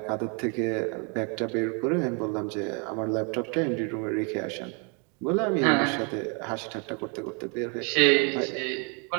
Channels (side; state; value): left; quieter; 35.3 dB